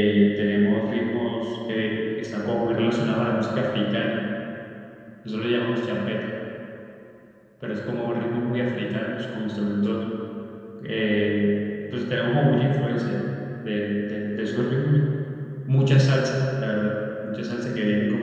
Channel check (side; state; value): both; identical; correlation 1.00